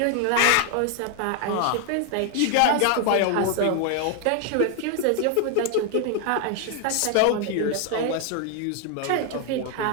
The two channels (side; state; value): both; different; correlation 0.00